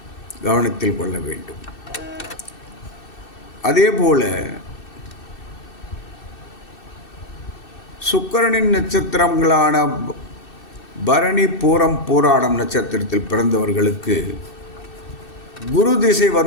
கவனத்தில் கொள்ள வேண்டும். அதே போல சுக்கிரனின் நட்சத்திரங்களான பரணி, பூரம், பூராடம் நட்சத்திரத்தில் பிறந்தவர்களுக்கு குரு திசை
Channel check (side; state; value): right; late; 2.6 ms